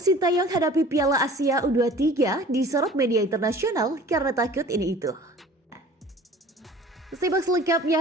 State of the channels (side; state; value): both; normal; correlation 0.46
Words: Sintayong hadapi Piala Asia U23 disorot media internasional karena takut ini itu. Simak